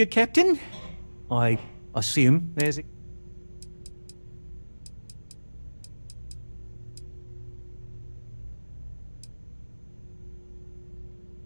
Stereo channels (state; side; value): inverted; both; correlation -1.00